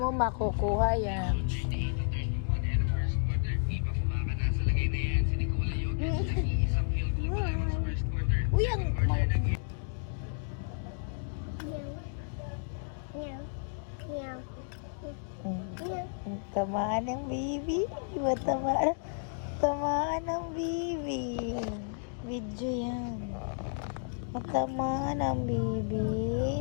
makukuha yan. Uy, ang tamaan ng baby. Diba tamaan ng baby. Video yan. Tamaan ng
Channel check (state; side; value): silent; right; digital silence